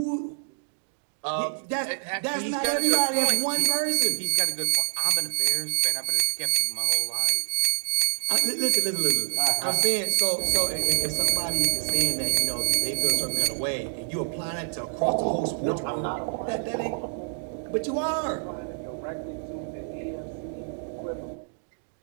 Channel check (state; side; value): silent; left; digital silence